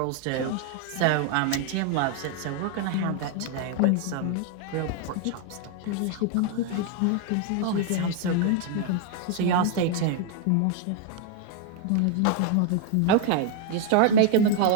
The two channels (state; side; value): different; both; correlation 0.00